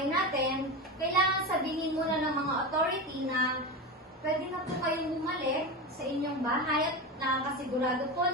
natin, kailangan sabihin muna ng mga authority na pwede na po kayong bumalik sa inyong bahay at nakakasigurado po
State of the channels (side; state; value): both; normal; correlation 0.21